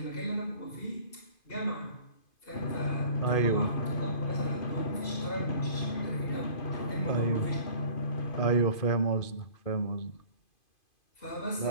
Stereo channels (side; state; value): right; late; 2.5 ms